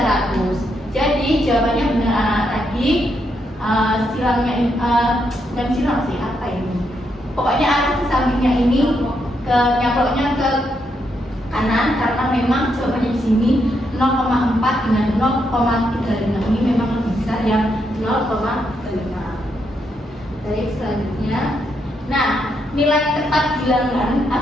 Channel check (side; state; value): both; normal; correlation 0.79